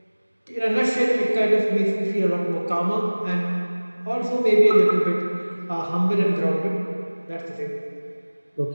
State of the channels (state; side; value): inverted; both; correlation -1.00